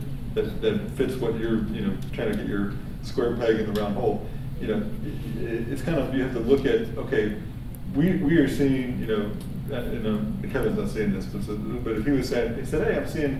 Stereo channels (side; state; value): both; identical; correlation 1.00